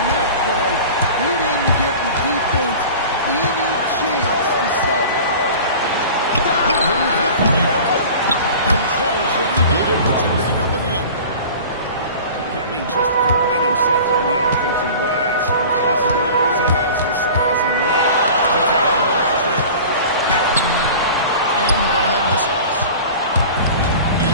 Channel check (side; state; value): both; inverted; correlation -0.39